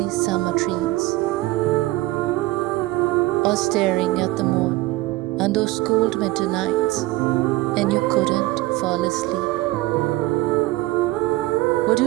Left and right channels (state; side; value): quieter; left; 19.1 dB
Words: summer dreams, or staring at the moon on those cold winter nights and you couldn't fall asleep? Would do